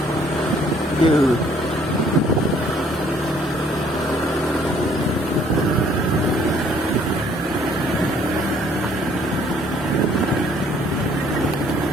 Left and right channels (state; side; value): normal; both; correlation 0.61